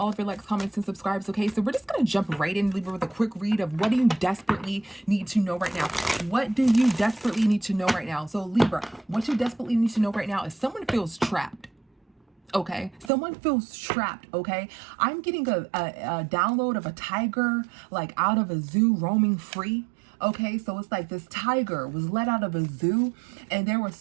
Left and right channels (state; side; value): drops out; left; at 13.1 s